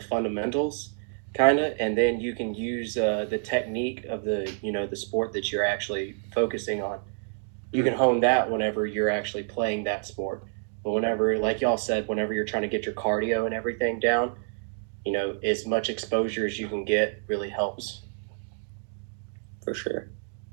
kind of, and then you can use the technique of the sport that you're actually focusing on. You can hone that whenever you're actually playing that sport. But whenever, like y'all said, whenever you're trying to get your cardio and everything down, as much exposure as you can get really helps. For sure.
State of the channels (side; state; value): left; silent; 59 dB below the other